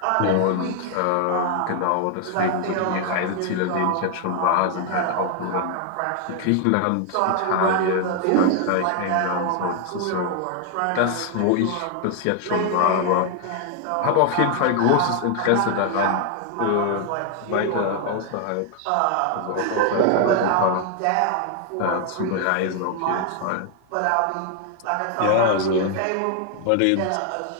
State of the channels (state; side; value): different; both; correlation 0.00